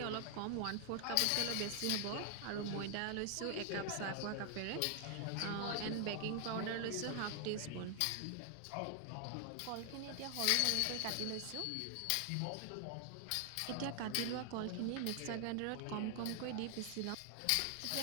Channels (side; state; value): both; different; correlation 0.00